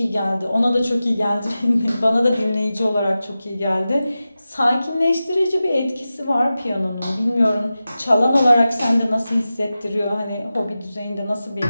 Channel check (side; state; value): both; inverted; correlation -0.94